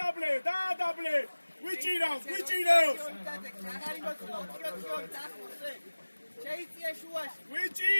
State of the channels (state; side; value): inverted; both; correlation -1.00